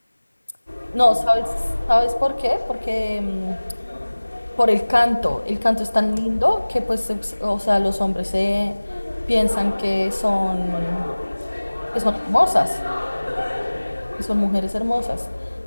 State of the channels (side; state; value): both; inverted; correlation -1.00